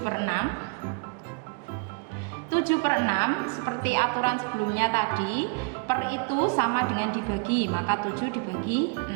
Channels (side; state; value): left; quieter; 31.6 dB